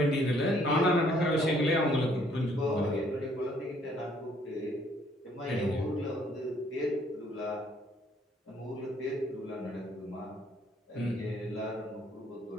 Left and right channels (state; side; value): normal; both; correlation 0.64